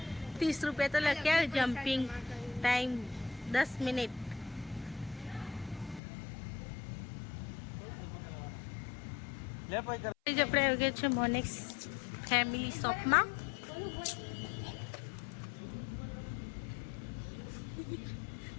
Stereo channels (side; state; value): right; drops out; at 6.0 s